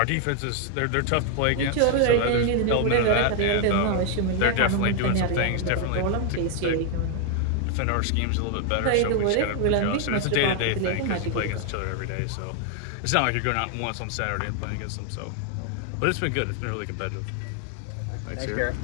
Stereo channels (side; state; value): both; different; correlation 0.00